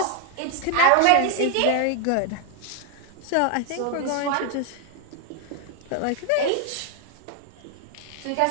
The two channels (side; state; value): both; different; correlation 0.00